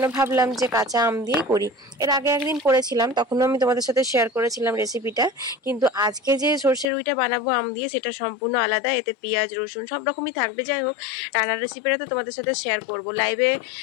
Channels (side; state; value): right; drops out; at 6.9 s